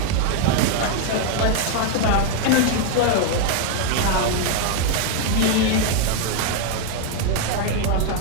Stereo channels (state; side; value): different; both; correlation 0.00